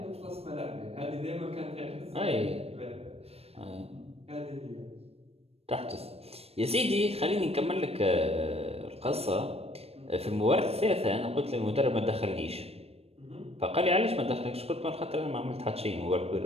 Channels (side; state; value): left; late; 0.29 ms